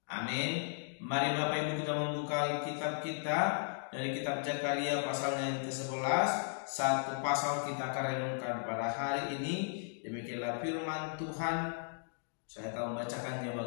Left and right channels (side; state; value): right; silent; digital silence